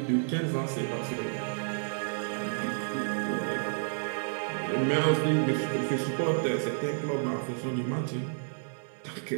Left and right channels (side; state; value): left; silent; 57 dB below the other